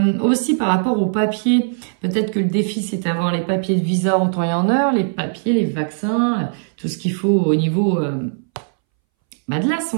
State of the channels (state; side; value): silent; left; 64 dB below the other